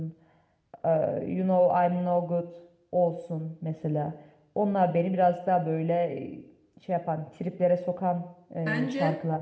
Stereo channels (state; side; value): identical; both; correlation 1.00